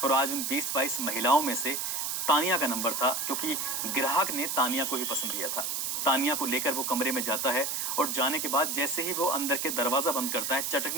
और आज उन 20-22 महिलाओं में से तानिया का नंबर था, क्योंकि ग्राहक ने तानिया को ही पसंद किया था। तानिया को लेकर वो कमरे में जाता है और जाने के बाद जैसे ही वो अंदर के दरवाजा बंद करता है,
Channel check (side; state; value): right; noise; hiss, 1 dB below the sound